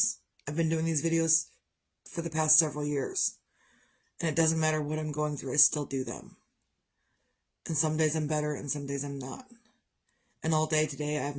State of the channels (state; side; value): identical; both; correlation 1.00